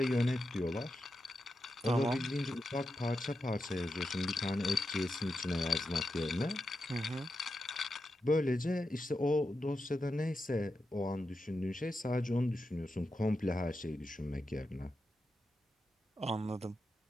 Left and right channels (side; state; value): both; normal; correlation 0.88